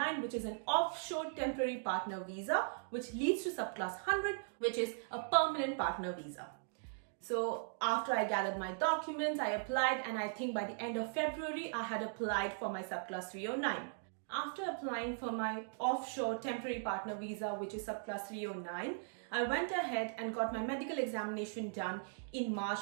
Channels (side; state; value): left; silent; digital silence